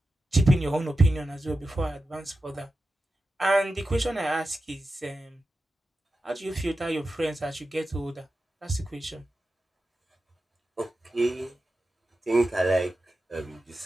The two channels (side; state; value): both; normal; correlation 0.92